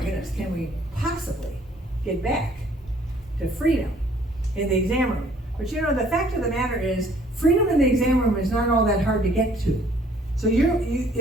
can we possibly get back to freedom in the exam room? But you know, the fact of the matter is, freedom in the exam room is not all that hard to get to. So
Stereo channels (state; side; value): normal; both; correlation 0.59